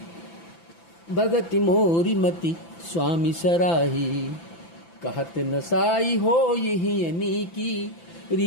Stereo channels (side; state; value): right; late; 5.9 ms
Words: भगत मोरी मति स्वामी सराही। कहत नसाई हो यही अनीकी,